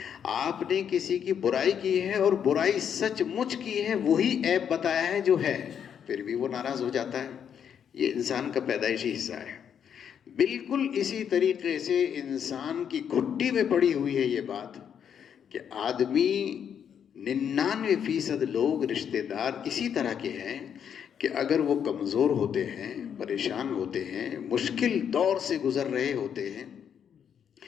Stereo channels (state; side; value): quieter; right; 8.2 dB